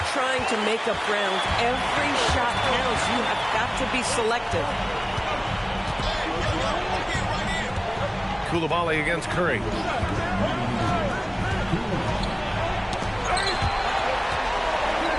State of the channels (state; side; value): identical; both; correlation 1.00